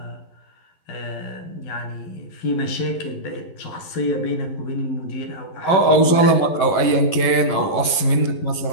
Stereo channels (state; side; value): late; right; 11 ms